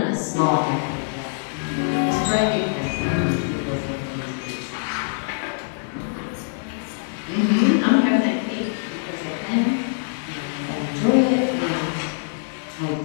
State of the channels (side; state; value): right; silent; digital silence